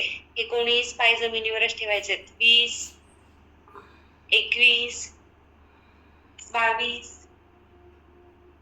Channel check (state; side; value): identical; both; correlation 1.00